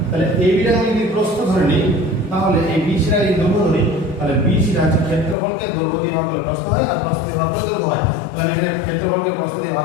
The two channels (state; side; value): drops out; right; at 5.4 s